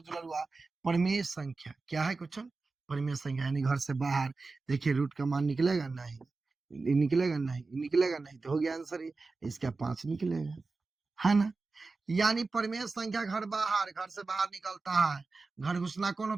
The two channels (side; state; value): left; quieter; 3.9 dB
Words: दुलरुआ, परिमेय संख्या क्या है क्वेश्चन? परिमेय संख्या यानी घर से बाहर। देखिए रूट का मान निकलेगा नहीं, निकलेगा नहीं, निकलेगा नहीं, तो हो गया आंसर ये। इसका 5 निकलेगा, है ना? यानी परिमेय संख्या घर से बाहर निकलता है। घर घुसना कौन